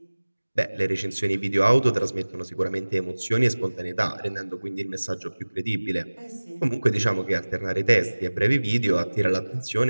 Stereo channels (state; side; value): inverted; both; correlation -1.00